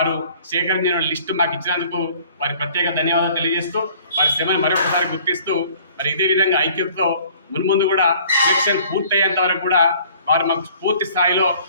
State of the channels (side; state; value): both; inverted; correlation -0.53